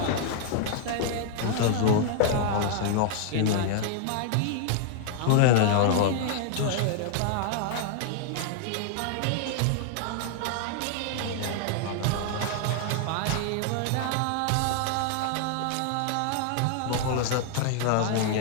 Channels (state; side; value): different; both; correlation 0.00